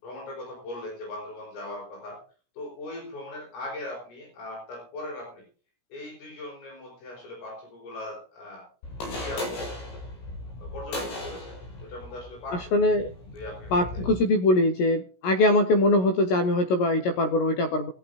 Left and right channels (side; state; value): right; late; 17 ms